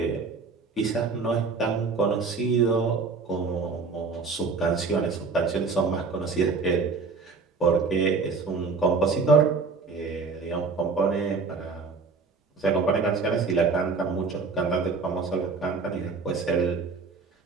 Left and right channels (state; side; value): quieter; left; 4.6 dB